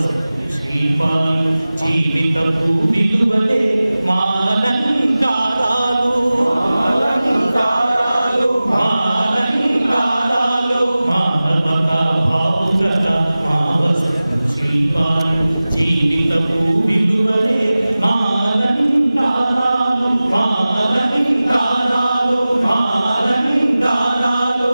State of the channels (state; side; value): inverted; both; correlation -0.97